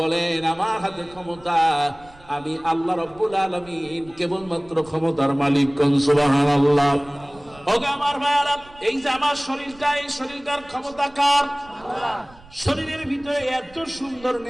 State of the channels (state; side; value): noise; right; rumble, 24 dB below the sound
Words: বলেন, আমার হাতে ক্ষমতা, আমি আল্লাহ রাব্বুল আলামিন কেবলমাত্র ক্ষমতার মালিক। কোন সুবহানাল্লাহ। ওগো আমার মায়েরা, এই যে আমার শরীরটা, এই শরীরটার ক্ষমতা কার? আল্লাহ। শরীরের ভিতরে এত সুন্দর